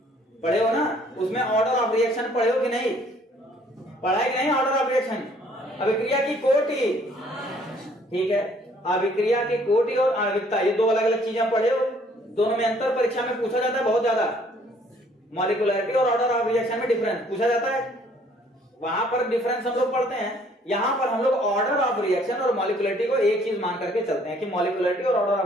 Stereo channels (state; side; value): normal; both; correlation 0.61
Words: पढ़े हो ना, उसमें ऑर्डर ऑफ रिएक्शन पढ़े हो कि नहीं? पढ़ा है कि नहीं ऑर्डर ऑफ रिएक्शन? अभिक्रिया की कोटि, ठीक है, अभिक्रिया की कोटि और आणविकता, ये 2 अलग अलग चीजें पढ़े हो। दोनों में अंतर परीक्षा में पूछा जाता है बहुत ज्यादा। मॉलिक्यूलरिटी और ऑर्डर ऑफ रिएक्शन में डिफरेंस पूछा जाता है, वहां पर डिफरेंस हम लोग पढ़ते हैं। यहां पर हम लोग ऑर्डर ऑफ रिएक्शन और मॉलिक्यूलरिटी को एक चीज मान करके चलते हैं कि मॉलिक्यूलरिटी और ऑर्डर